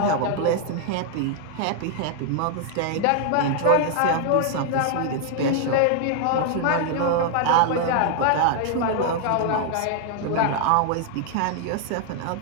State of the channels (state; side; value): different; both; correlation 0.00